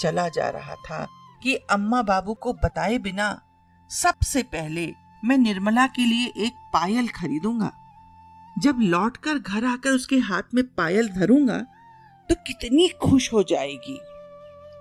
जा रहा था कि अम्मा बाबू को बताए बिना सबसे पहले मैं निर्मला के लिए एक पायल खरीदूंगा। जब लौटकर घर आकर उसके हाथ में पायल धरूंगा तो कितनी खुश हो जाएगी।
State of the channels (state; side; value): identical; both; correlation 1.00